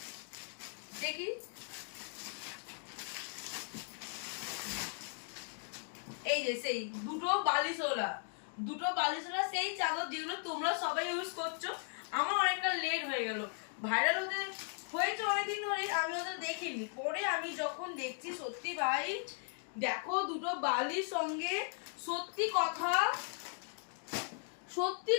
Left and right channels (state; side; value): silent; right; 53 dB below the other